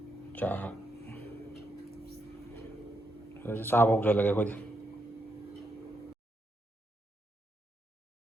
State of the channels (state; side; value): normal; both; correlation 0.80